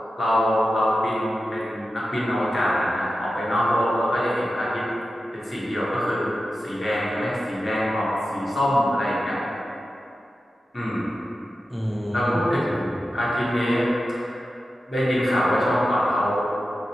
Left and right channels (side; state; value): both; normal; correlation 0.92